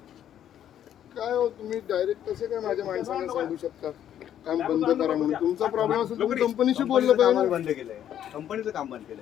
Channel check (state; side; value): quieter; right; 10.5 dB